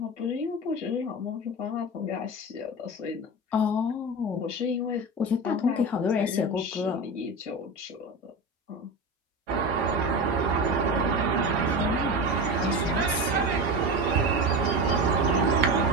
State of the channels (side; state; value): both; normal; correlation 0.24